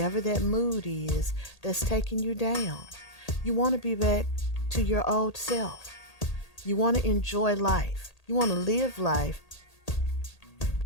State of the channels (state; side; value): late; right; 1.8 ms